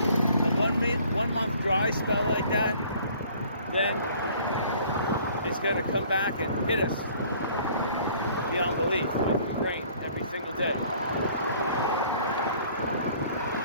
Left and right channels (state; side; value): inverted; both; correlation -0.55